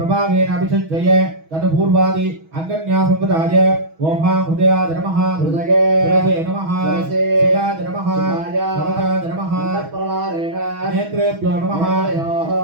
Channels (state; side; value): late; left; 6.2 ms